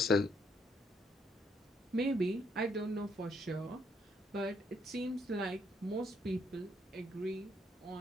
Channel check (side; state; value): both; normal; correlation 0.71